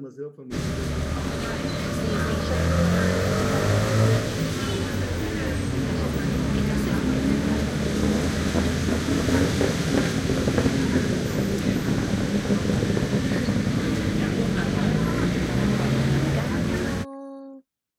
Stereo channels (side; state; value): both; identical; correlation 1.00